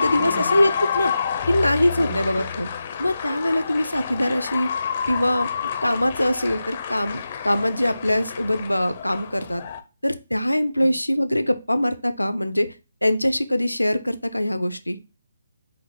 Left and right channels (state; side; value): inverted; both; correlation -0.93